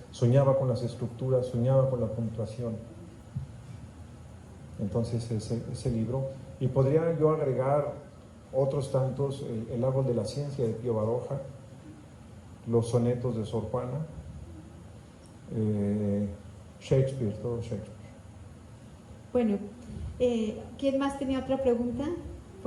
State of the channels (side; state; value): both; identical; correlation 1.00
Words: soñaba con las estructuras, soñaba con la puntuación. Entonces ese libro, y podría yo agregar otros tantos, el árbol de la ciencia de Pío Baroja, los sonetos de Sor Juana, Shakespeare, todo Shakespeare. Bueno, ¿quién más tenía otra pregunta?